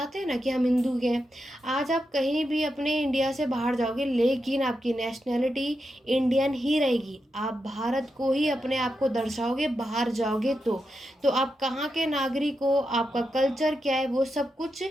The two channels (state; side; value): normal; both; correlation 0.87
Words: हैं ना कि हम हिंदू के हैं। आज आप कहीं भी अपने इंडिया से बाहर जाओगे, लेकिन आपकी नेशनलिटी इंडियन ही रहेगी। आप भारत को ही अपने आप को दर्शाओगे बाहर जाओगे तो आप कहाँ के नागरिक हो, आपका कल्चर क्या है, वो सब कुछ